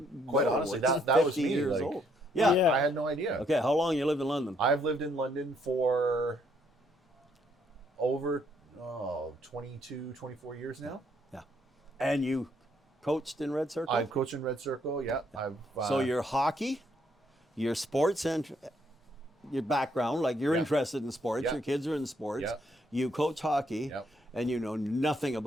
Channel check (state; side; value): normal; both; correlation 0.70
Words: Quite honestly, it's that was 50 me. years Like, old. Yeah. I had no idea. Okay, how long you lived in London? I've lived in London for over 22, 24 years now. Yeah. And you coached in Red Circle? I've coached in Red Circle, yeah. So your hockey, your sports, and your background, like you're interested in sports, your kids are in sports, you coach hockey, and you know nothing